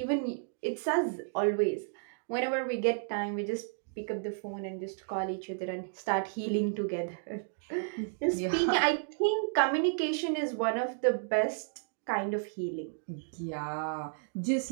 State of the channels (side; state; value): left; silent; digital silence